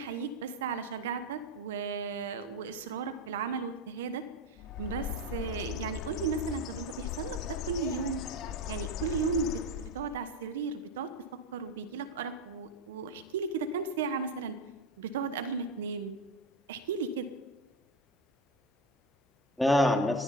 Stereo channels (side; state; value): both; normal; correlation 0.17